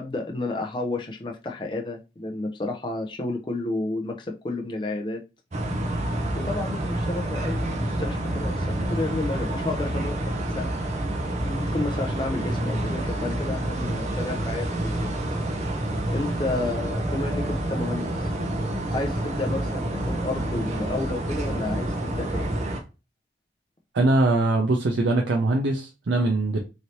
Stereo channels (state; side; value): normal; both; correlation 0.71